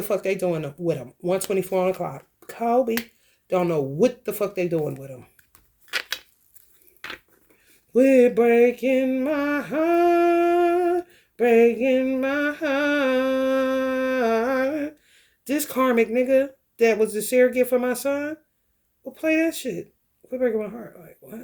fuck they doing with him. 124 on the clock. Kobe. Don't know what the fuck they doing with him. We're breaking my heart. Breaking my heart. This karmic nigga that was the surrogate for my son will play that shit. We're breaking my heart. Like,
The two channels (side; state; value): both; identical; correlation 1.00